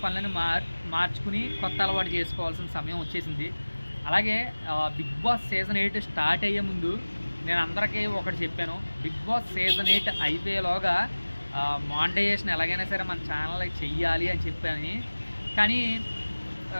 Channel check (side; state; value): both; inverted; correlation -1.00